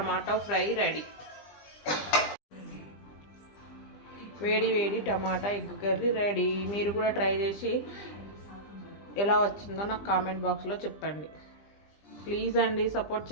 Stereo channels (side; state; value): right; late; 20 ms